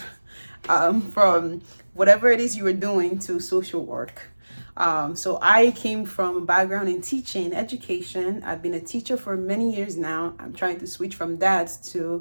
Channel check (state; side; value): inverted; both; correlation -1.00